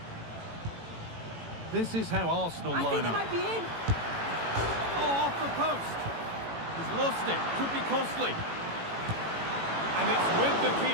This is how Arsenal line up. I think they might be in. Oh, off the post. He's lost it. Could be costly. And it's with the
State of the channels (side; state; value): left; late; 18 ms